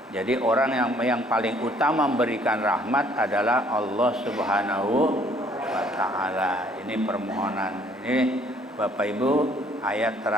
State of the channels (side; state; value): both; normal; correlation 0.61